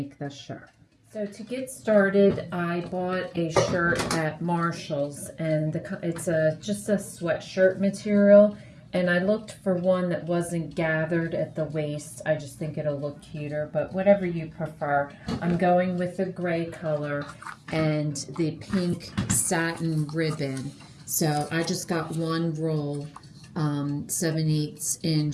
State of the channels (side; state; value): both; identical; correlation 1.00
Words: this shirt. So to get started, I bought a shirt at Marshall's, and it's just a sweatshirt material, and I looked for one that wasn't gathered at the waist. I just think it'll look cuter, but whatever you prefer. I'm going with the gray color and the pink satin ribbon. So I just got one roll, 7/8 inch,